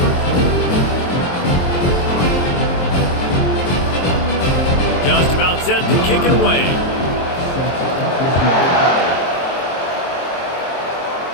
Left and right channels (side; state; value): right; late; 23 ms